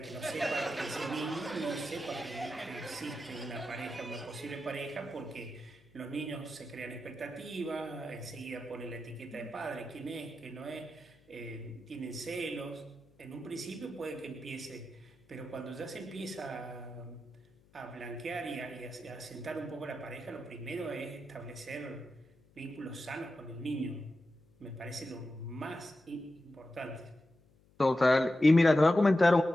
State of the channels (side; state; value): left; noise; hum, 30 dB below the sound